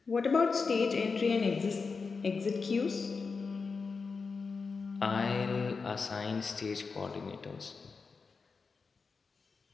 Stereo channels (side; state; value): right; quieter; 4.8 dB